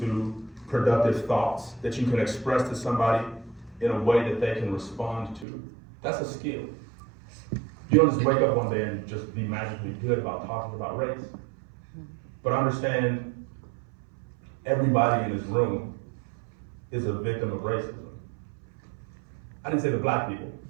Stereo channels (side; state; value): left; drops out; at 5.5 s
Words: productive thoughts that you can express to somebody in a way that they can respond to. That's a skill. You don't just wake up one day and just be magically good about talking about race. But understand, everybody in this room is a victim of racism. I didn't say the black people